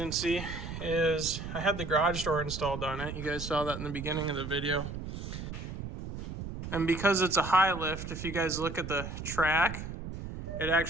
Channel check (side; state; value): right; noise; rumble, 8 dB below the sound